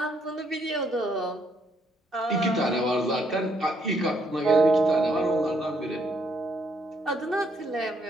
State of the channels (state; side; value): normal; both; correlation 0.71